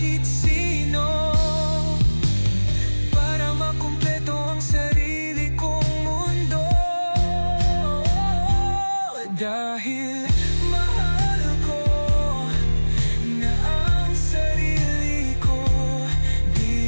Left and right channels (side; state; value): both; inverted; correlation -1.00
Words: sino para makumpleto ang sarili kong mundo. Dahil mahal ko na ang sarili ko,